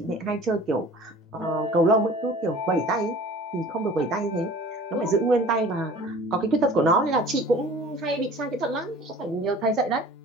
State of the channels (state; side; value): normal; both; correlation 0.45